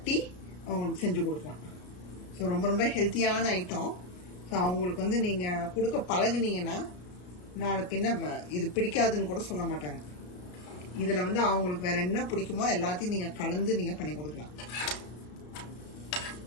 அவங்களுக்கு செஞ்சு கொடுக்கலாம். ஸோ ரொம்ப ரொம்ப ஹெல்த்தியான ஐட்டம். ஸோ அவங்களுக்கு வந்து நீங்க கொடுக்க பழகுனீங்கன்னா நாளைக்கு என்ன இது பிடிக்காதுன்னு கூட சொல்ல மாட்டாங்க. இதில் வந்து அவங்களுக்கு வேற என்ன பிடிக்குமோ எல்லாத்தையும் நீங்கள் கலந்து நீங்கள் பண்ணி கொடுக்கலாம்.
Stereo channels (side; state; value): right; late; 33 ms